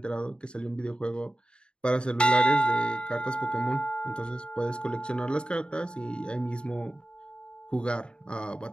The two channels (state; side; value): late; right; 0.051 ms